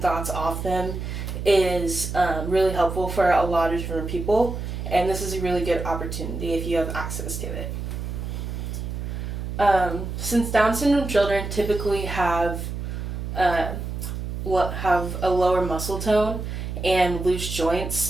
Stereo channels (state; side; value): noise; right; hum, 5 dB below the sound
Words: thoughts off them is really helpful for a lot of different people, and this is a really good opportunity if you have access to it. Since Down syndrome children typically have a lower muscle tone and loose